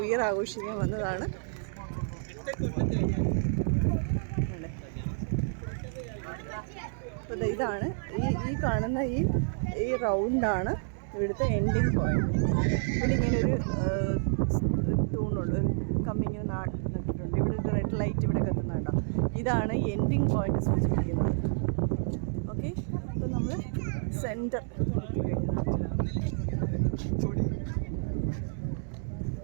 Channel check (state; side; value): silent; left; digital silence